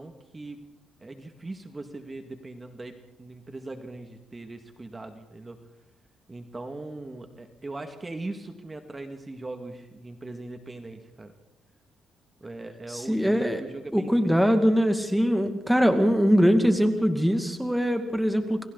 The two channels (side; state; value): both; normal; correlation 0.97